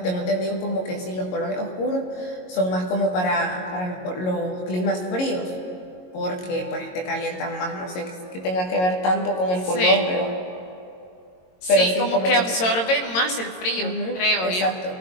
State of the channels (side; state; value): right; late; 22 ms